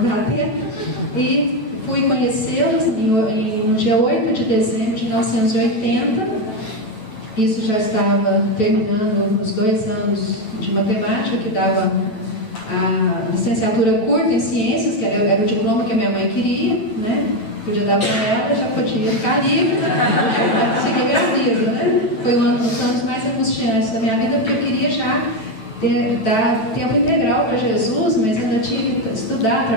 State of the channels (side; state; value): right; late; 9.5 ms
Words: dá tempo. E fui conhecê-las no dia 8 de dezembro de 1980. Isso já estava terminando os 2 anos de matemática, que dava a licenciatura curta em ciências, que era o diploma que a minha mãe queria, né? Podia dar para ela, já podia ficar livre, para seguir minha vida, né? Foi um dos anos mais angustiantes da minha vida, porque eu queria já dar tempo integral para Jesus, mas ainda tinha que estudar,